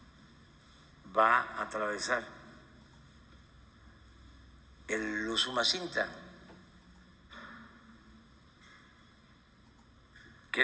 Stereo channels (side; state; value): both; identical; correlation 1.00